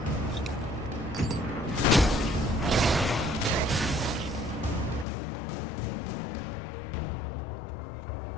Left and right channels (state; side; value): drops out; right; at 5.1 s